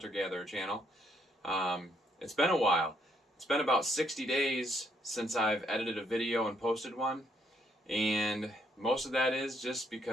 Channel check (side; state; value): both; normal; correlation 0.72